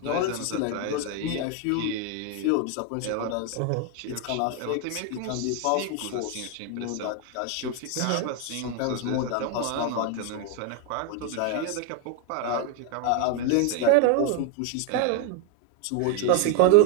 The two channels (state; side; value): different; both; correlation 0.01